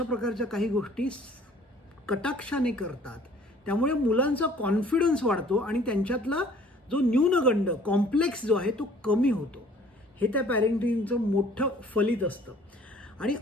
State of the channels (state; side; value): normal; both; correlation 0.54